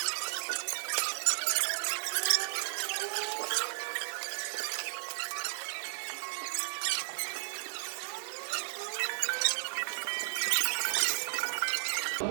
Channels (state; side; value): silent; left; digital silence